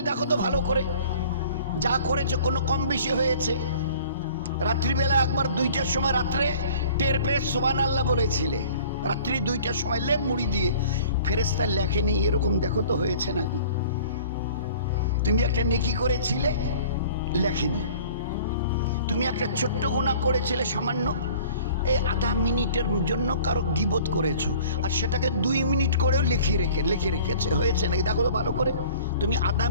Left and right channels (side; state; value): both; inverted; correlation -0.48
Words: দেখো তো ভালো করে যা করেছে কোনো কম বেশি হয়েছে। রাত্রিবেলা একবার 2টার সময় রাত্রে টের পেয়ে সুবহানাল্লাহ বলেছিলে, রাত্রি 2টার সময় লেপ মুড়ি দিয়ে। ফেরেশতা লেখেনি এরকম, দেখো তো হয়েছে নাকি। তুমি একটা নেকি করেছিলে, লেখেনি। তুমি একটা ছোট্ট গুনাহ করেছিলে সামান্য, এই আধা মিনিটের জন্য কারো গীবত করেছো, আর সেটাকে 2 মিনিট করেও লিখে রেখেছে, হয়েছে নাকি দেখো তো ভালো করে। তুমি আধা